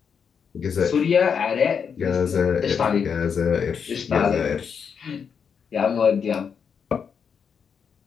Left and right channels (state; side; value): quieter; right; 6.7 dB